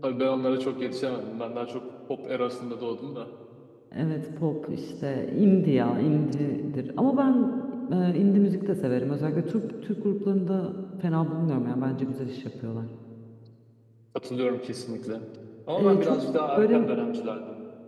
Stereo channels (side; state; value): both; identical; correlation 1.00